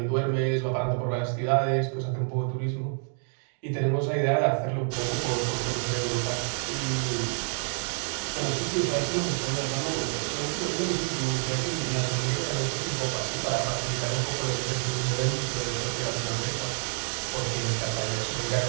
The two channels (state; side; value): silent; left; 59 dB below the other